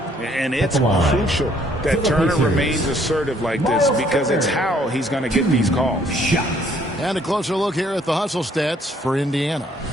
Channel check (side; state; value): both; normal; correlation 0.64